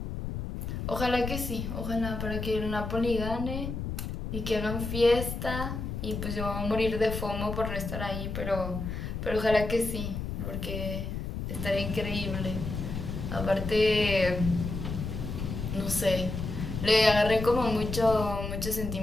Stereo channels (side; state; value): left; noise; rumble, 5 dB below the sound